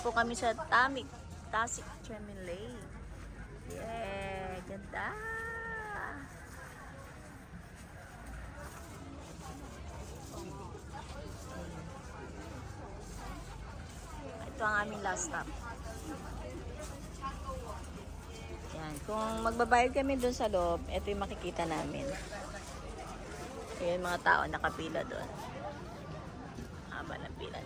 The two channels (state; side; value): identical; both; correlation 1.00